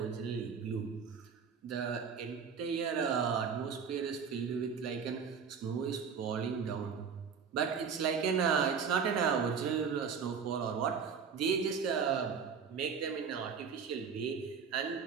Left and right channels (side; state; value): left; quieter; 6.4 dB